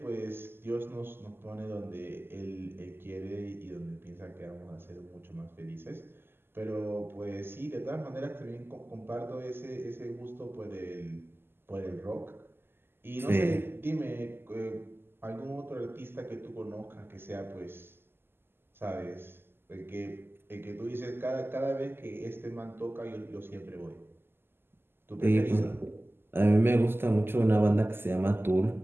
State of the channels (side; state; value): left; late; 0.11 ms